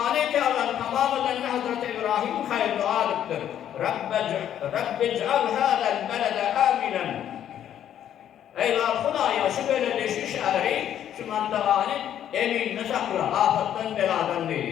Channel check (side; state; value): right; quieter; 10.4 dB